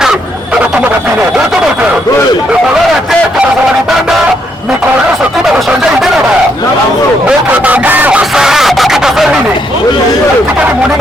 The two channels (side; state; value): both; normal; correlation 0.75